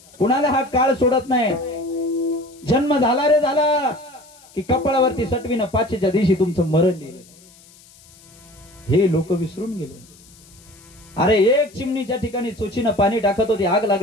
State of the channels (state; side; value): noise; left; hiss, 25 dB below the sound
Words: कुणाला हा काळ सोडत नाही. जन्म झाला रे झाला की कपाळावरती सटवीनं 5च्या दिवशी तुमचं मरण लिहिलं. हे लोक विसरून गेले. अरे एक चिमणीच्या ठिकाणी चोचीनं पाणी टाकत होती आग